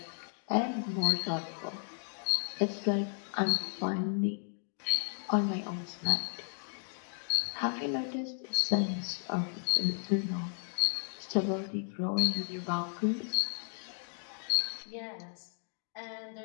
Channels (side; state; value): right; silent; 55 dB below the other